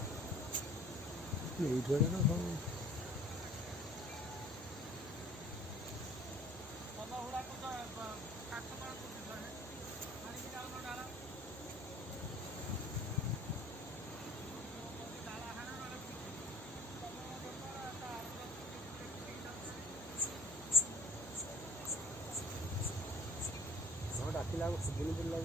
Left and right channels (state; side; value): normal; both; correlation 0.48